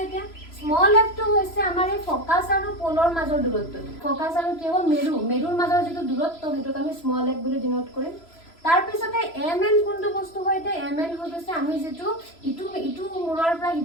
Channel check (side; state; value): right; late; 3.0 ms